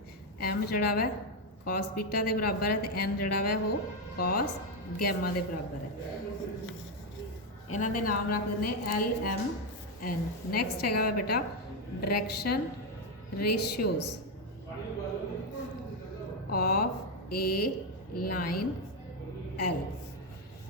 एम जड़ा वा कॉस बीटा के बराबर है, तो एन जड़ा वा वो कॉस गैमा के बराबर है। इन्हों के नाम रख दें एल एम एन। नैक्सट है बेटा direction ratios of a line L.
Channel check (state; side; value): normal; both; correlation 0.06